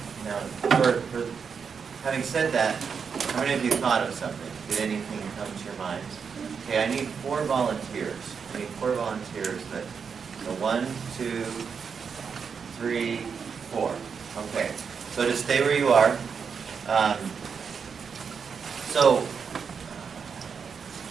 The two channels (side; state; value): left; quieter; 6.2 dB